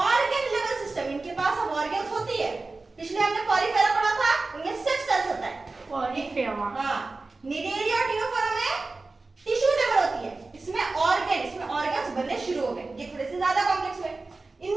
लेवल सिस्टम, इनके पास अब ऑर्गन्स होती है। पिछले हमने पॉलीफेरा पढ़ा था, उनमें 6 सेल्स होता है। पॉलीफेरा, हां, निडेरिया और टीनोफोरा में टिश्यू लेवल होती है। इसमें ऑर्गन्स बनने शुरू हो गए, ये थोड़े से ज्यादा कॉम्प्लेक्स हुए।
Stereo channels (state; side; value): quieter; left; 3.5 dB